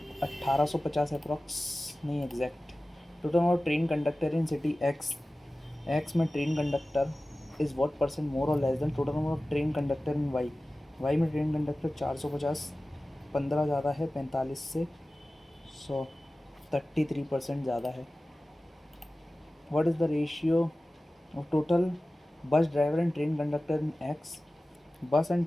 1850 अप्रॉक्स, नहीं exact. Total number train conductor in city X, X में train conductor is what percent more और less than total number of train conductor in Y, Y में ट्रेन कंडक्टर 450, 15 ज़्यादा है 45 से 100, 33% ज़्यादा है। What is the ratio of total bus driver and train conductor in X, bus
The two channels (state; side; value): normal; both; correlation 0.96